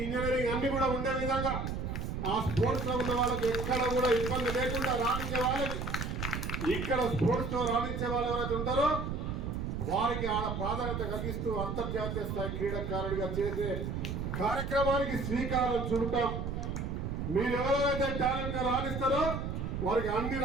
ఇంజనీరింగ్ అన్ని కూడా ఉండే విధంగా ఆ స్పోర్ట్స్ లో ఉన్న వాళ్ళకి ఎక్కడ కూడా ఇబ్బంది లేకుండా రాణించే వాళ్ళకి, ఇక్కడ స్పోర్ట్స్ లో రాణించే వాళ్ళు ఎవరైతే ఉంటారో వారికి ఆడ ప్రాధాన్యత కలిగిస్తూ అంతర్జాతీయ స్థాయి క్రీడాకారుడిగా చేసే కార్యక్రమానికి శ్రీకారం చుడతాం. మీరు ఎవరైతే టాలెంట్ గా రాణిస్తారో వారికి అన్ని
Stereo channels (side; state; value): right; noise; rumble, 3 dB below the sound